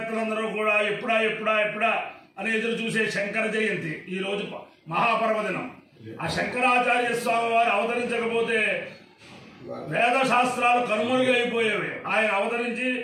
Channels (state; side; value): identical; both; correlation 1.00